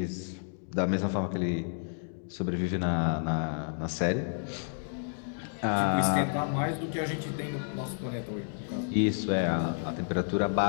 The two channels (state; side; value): silent; right; digital silence